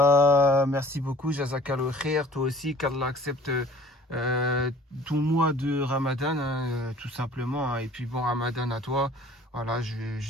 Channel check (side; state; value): both; normal; correlation 0.51